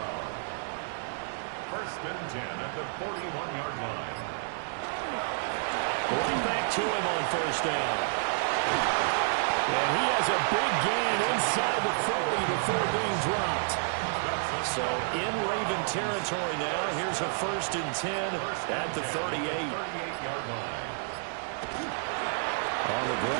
First and 10 at the 41-yard line. Right back to him on first down. And he has a big gain inside the 40 before being dropped. So in Raven territory now, here's a first and 10 at the 38. 38-yard line. On the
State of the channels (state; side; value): silent; left; digital silence